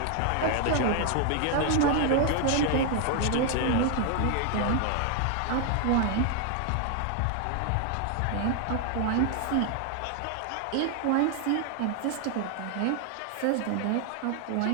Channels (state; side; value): different; both; correlation 0.00